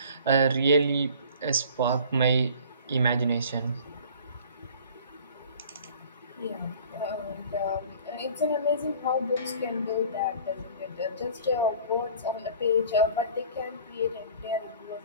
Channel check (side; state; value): both; inverted; correlation -0.47